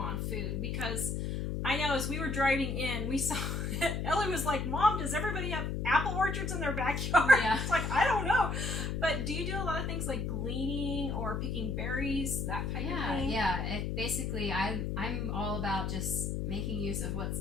food? Because I know as we were driving in, we saw, Ellie was like, Mom, does everybody have apple orchards in their backyard? Yeah. It's like, I don't know. But do you do a lot of things like gleaning or picking berries, that type of thing? Yeah. Basically, I'm all about just making use of what's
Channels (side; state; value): left; noise; hum, 1 dB below the sound